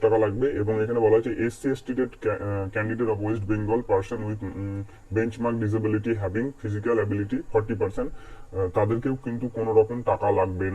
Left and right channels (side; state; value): both; identical; correlation 1.00